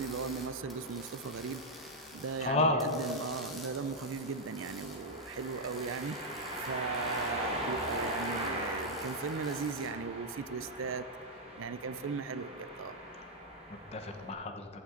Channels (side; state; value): both; normal; correlation -0.02